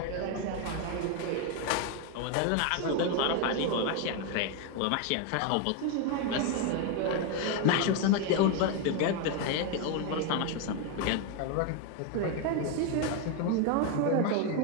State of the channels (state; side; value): different; both; correlation 0.02